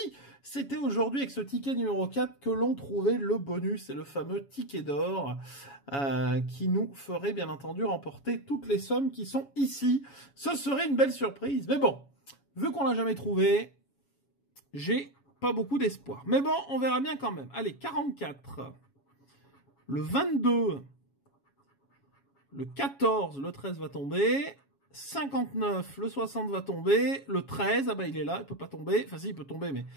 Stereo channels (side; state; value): right; late; 7.2 ms